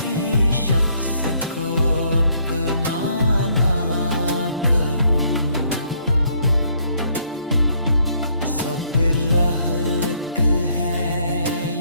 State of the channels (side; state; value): both; inverted; correlation -0.68